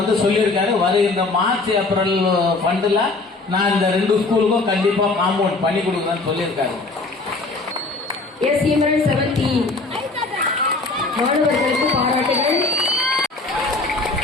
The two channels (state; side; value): quieter; right; 3.4 dB